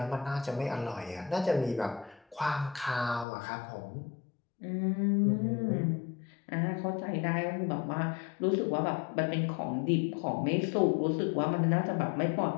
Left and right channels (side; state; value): right; drops out; at 3.2 s